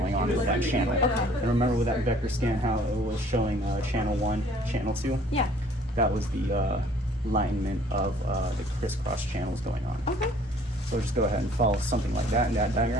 on with that channel. And remember with that vector scan how it was showing channel 1, channel 2? Yeah. That was the alignment of the crisscross channels going on. Okay. So just go ahead and follow something like that in that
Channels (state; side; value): normal; both; correlation 0.56